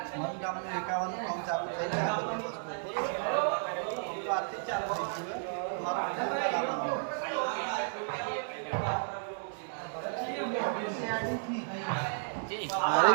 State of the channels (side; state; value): left; silent; digital silence